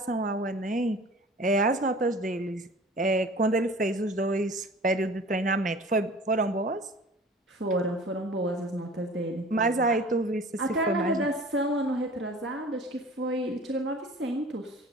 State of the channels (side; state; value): both; normal; correlation 0.43